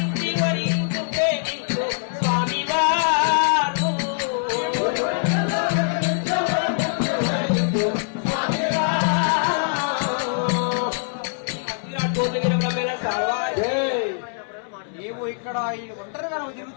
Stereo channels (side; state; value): right; silent; digital silence